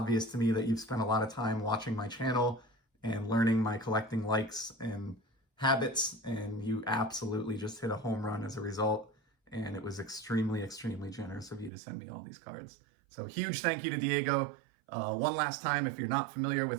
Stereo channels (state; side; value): drops out; left; at 11.7 s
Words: to me that you've spent a lot of time watching my channel and learning my collecting likes and habits, and you absolutely just hit a home run as a result. And it was extremely, extremely generous of you to send me all these cards. So huge thank you to Diego. One last time, if you're not familiar